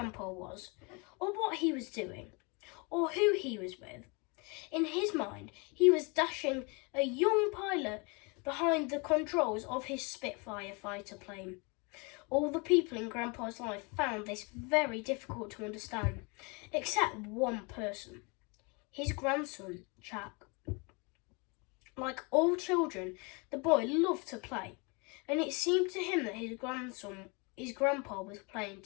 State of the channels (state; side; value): quieter; right; 30.6 dB